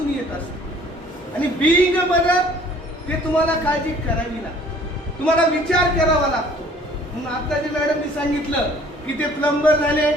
येत असते. आणि बीइंग अ मदर ते तुम्हाला काळजी करावी लागते, तुम्हाला विचार करावा लागतो. म्हणून आता जे मॅडमनी सांगितलं की ते प्लंबर झाले,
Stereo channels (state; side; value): normal; both; correlation 0.54